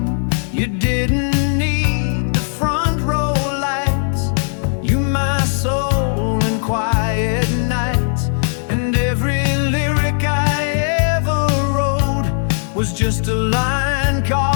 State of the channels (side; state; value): right; silent; 68 dB below the other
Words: You didn't need the front row lights, you my soul in quiet nights. And every lyric I ever wrote was just a line